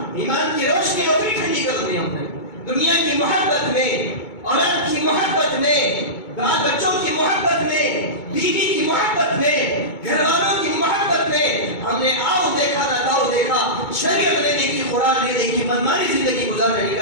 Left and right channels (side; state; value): right; late; 2.2 ms